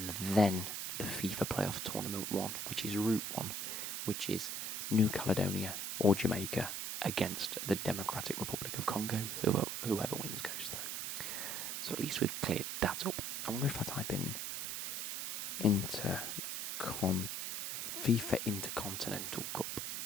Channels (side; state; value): right; noise; hiss, 3 dB below the sound